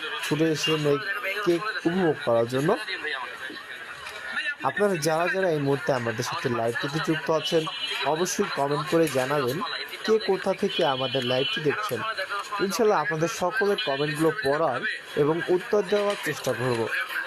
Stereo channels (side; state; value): both; identical; correlation 1.00